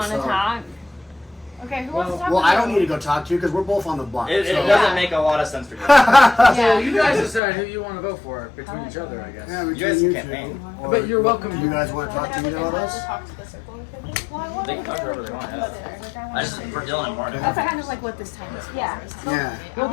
to so- talk? Okay, who wants to talk Well, to I you? don't need to go talk to you because we're both on the block. It so. doesn't make a lot of sense for you. So you guys decide who you want to vote for between each other, I guess. Yeah, You guys can campaign. But you're welcome. You guys want to talk to either of us? Talk to the circle of people? They can talk whoever they want. Yeah. I just for Dylan and Martin. That's kind of like what this time is for. Yeah. Yeah. Well,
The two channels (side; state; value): right; drops out; at 7.4 s